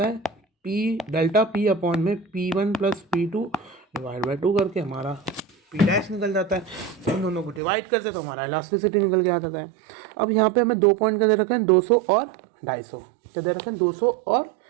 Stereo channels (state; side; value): drops out; left; at 7.6 s